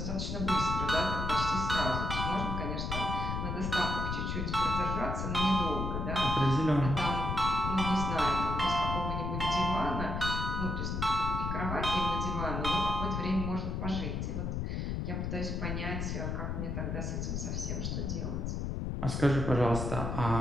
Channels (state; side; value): noise; left; rumble, 2 dB below the sound